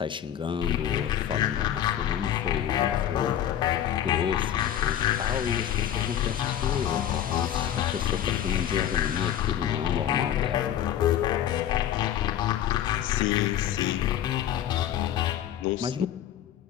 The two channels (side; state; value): right; quieter; 10.7 dB